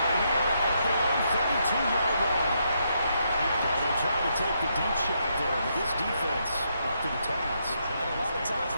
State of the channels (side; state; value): both; inverted; correlation -0.78